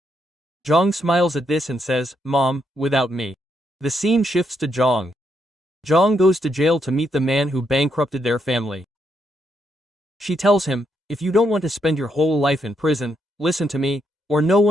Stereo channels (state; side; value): normal; both; correlation 0.78